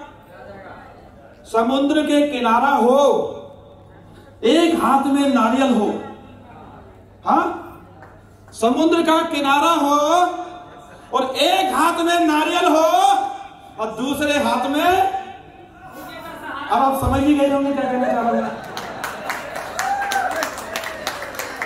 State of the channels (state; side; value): identical; both; correlation 1.00